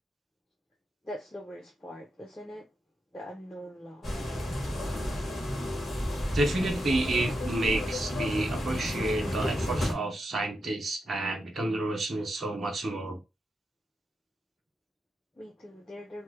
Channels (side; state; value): both; normal; correlation 0.86